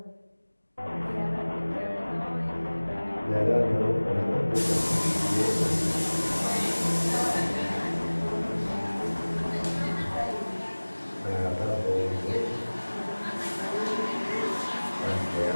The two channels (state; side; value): inverted; both; correlation -1.00